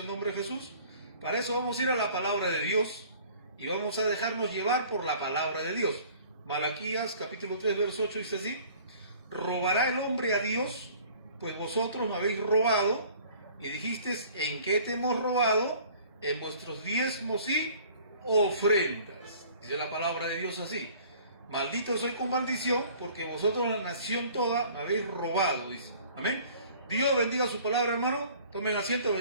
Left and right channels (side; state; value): both; inverted; correlation -0.51